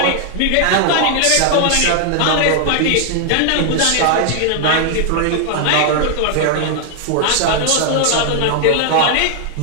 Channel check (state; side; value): different; both; correlation 0.00